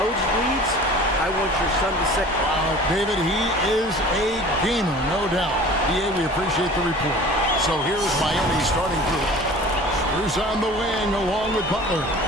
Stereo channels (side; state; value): both; normal; correlation 0.43